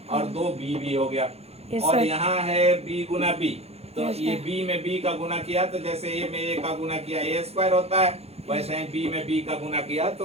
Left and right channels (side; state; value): left; late; 0.30 ms